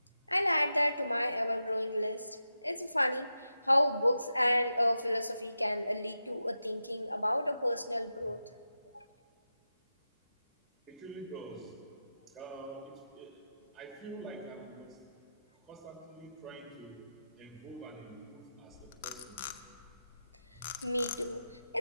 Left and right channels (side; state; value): both; inverted; correlation -0.91